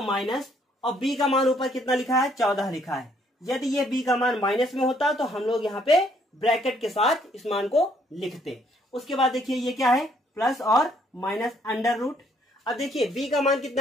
माइनस, और b का मान ऊपर कितना लिखा है, 14 लिखा है। यदि ये b का मान माइनस में होता तो हम लोग यहाँ पे ब्रैकेट के साथ इस मान को लिखते। उसके बाद देखिए ये क्या है, प्लस और माइनस अंडर रूट। अब देखिए b का मान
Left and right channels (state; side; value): normal; both; correlation 0.67